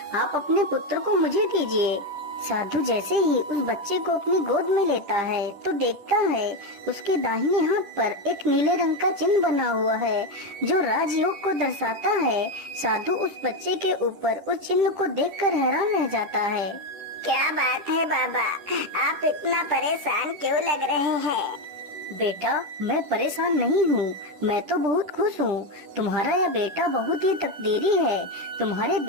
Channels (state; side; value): late; left; 10 ms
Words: आप अपने पुत्र को मुझे दीजिए। साधु जैसे ही उस बच्चे को अपनी गोद में लेता है तो देखता है उसके दाहिने हाथ पर एक नीले रंग का चिन्ह बना हुआ है जो राजयोग को दर्शाता है। साधु उस बच्चे के ऊपर उस चिन्ह को देखकर हैरान रह जाता है। क्या बात है बाबा, आप इतना परेशान क्यों लग रहे हैं? बेटा, मैं परेशान नहीं हूँ, मैं तो बहुत खुश हूँ। तुम्हारा यह बेटा बहुत ही तकदीरी है। तुम्हारे